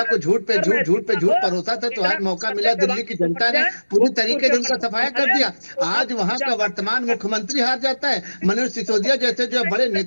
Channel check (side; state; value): both; inverted; correlation -1.00